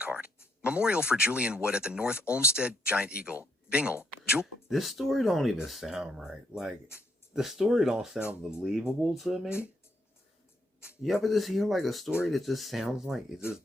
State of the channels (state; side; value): normal; both; correlation 0.76